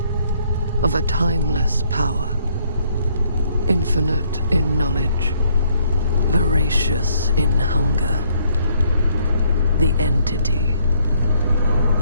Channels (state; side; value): inverted; both; correlation -0.66